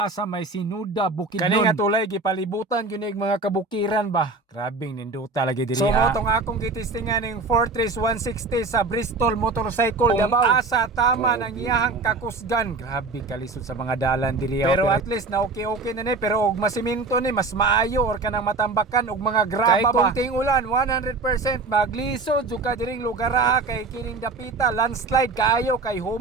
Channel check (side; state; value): left; quieter; 3.7 dB